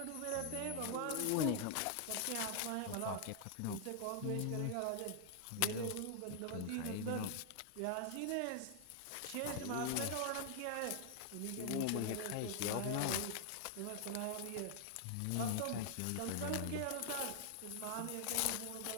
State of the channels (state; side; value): different; both; correlation 0.00